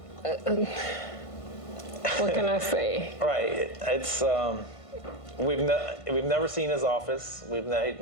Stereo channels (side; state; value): right; late; 1.5 ms